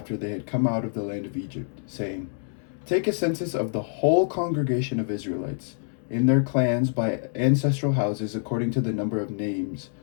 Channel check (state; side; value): silent; right; 61 dB below the other